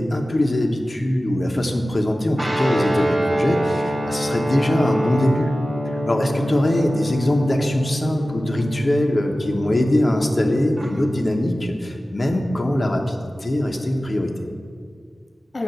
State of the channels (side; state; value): both; normal; correlation 0.96